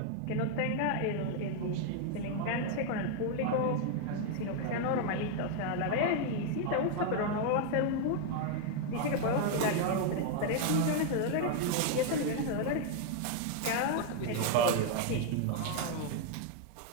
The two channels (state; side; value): different; both; correlation 0.00